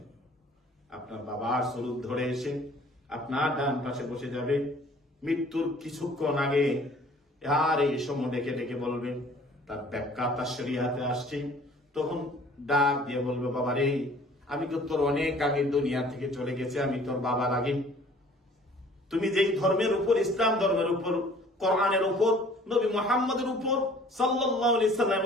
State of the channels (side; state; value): both; normal; correlation 0.53